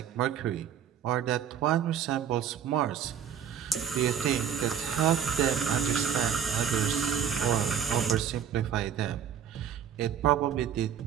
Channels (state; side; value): quieter; left; 8.6 dB